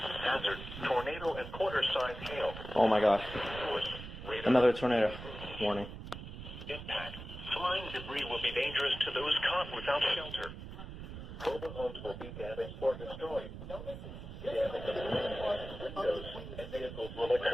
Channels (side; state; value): right; noise; rumble, 11 dB below the sound